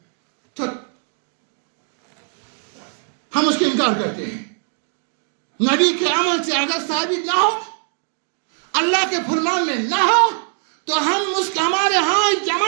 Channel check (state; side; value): silent; left; 56 dB below the other